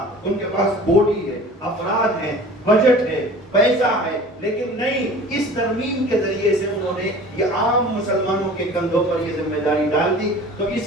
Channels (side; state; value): both; normal; correlation 0.43